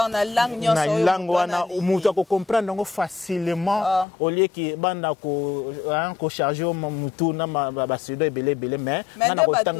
la langue wana mutu ko comprendre facilement au lieu que banda ko charger mutu na ba suédois belé mais na ko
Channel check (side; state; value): right; drops out; at 4.0 s